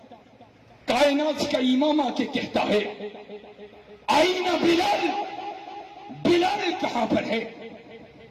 کائنات کا امام آ کے کہتا ہے آئین بلال، بلال کہاں پر ہے؟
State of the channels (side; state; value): both; identical; correlation 1.00